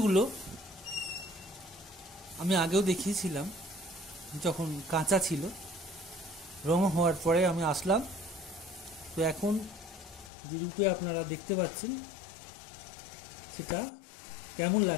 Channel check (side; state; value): right; drops out; at 10.3 s